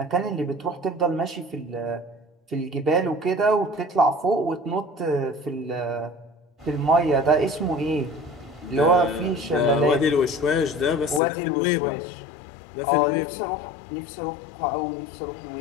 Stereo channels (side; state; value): right; drops out; at 11.2 s